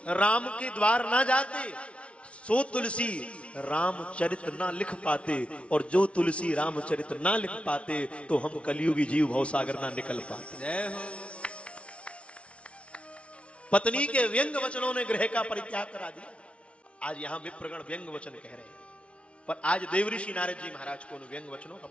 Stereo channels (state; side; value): late; right; 0.061 ms